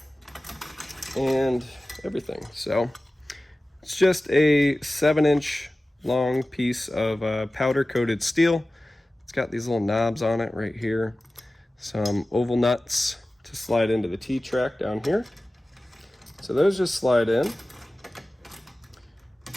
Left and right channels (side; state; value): both; normal; correlation 0.96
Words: and everything. So it's just a 7-inch long piece of powder coated steel. It's got these little knobs on it right here, some oval nuts to slide into the T-track down here. So those just slide in,